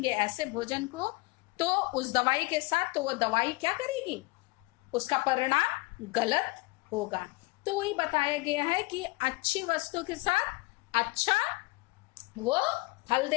ऐसे भोजन को, तो उस दवाई के साथ, तो वो दवाई क्या करेगी, उसका परिणाम गलत होगा। तो वही बताया गया है कि अच्छी वस्तु के साथ अच्छा वो फल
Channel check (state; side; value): quieter; right; 24.1 dB